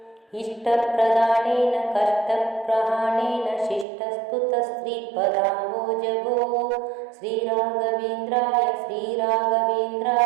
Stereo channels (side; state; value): left; drops out; at 3.9 s